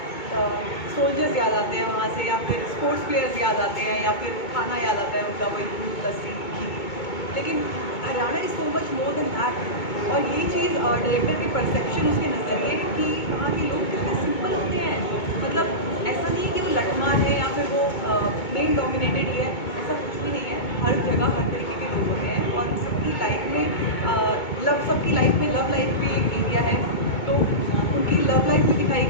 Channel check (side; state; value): right; late; 2.2 ms